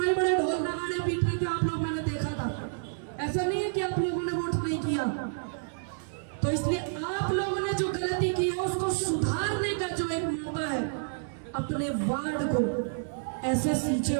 बड़े ढोल नगाड़े पीट रहे थे आप लोग, मैंने देखा था। ऐसा नहीं है कि आप लोगों ने वोट नहीं किया। तो इसलिए आप लोगों ने जो गलती की है उसको सुधारने का जो एक मौका है, अपने वार्ड को ऐसे सींचे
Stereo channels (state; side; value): silent; left; digital silence